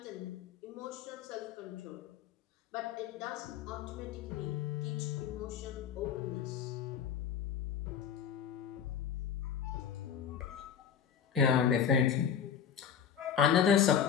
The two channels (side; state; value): right; quieter; 8.1 dB